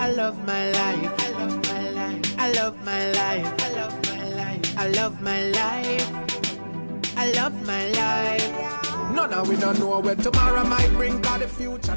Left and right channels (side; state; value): both; inverted; correlation -1.00